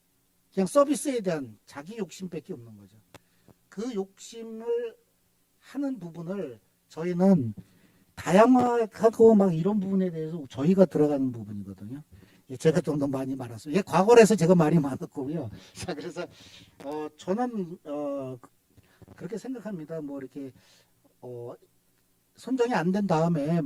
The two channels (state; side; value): identical; both; correlation 1.00